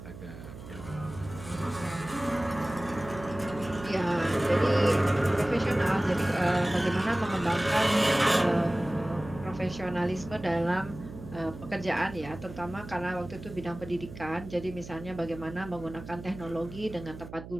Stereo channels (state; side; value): noise; right; hum, 13 dB below the sound